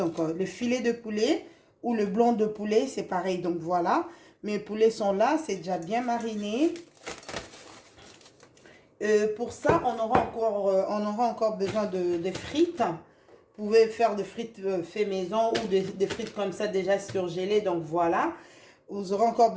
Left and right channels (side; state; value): both; identical; correlation 1.00